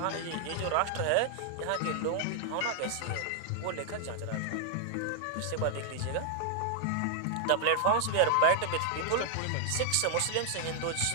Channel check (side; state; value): both; different; correlation 0.00